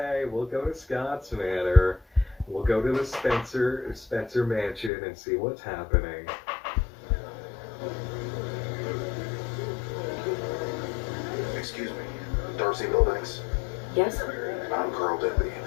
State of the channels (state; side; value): drops out; right; at 4.9 s